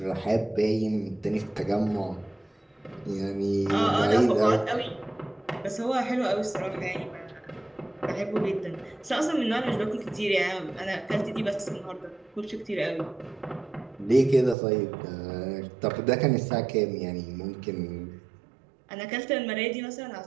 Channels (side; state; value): left; drops out; at 14.6 s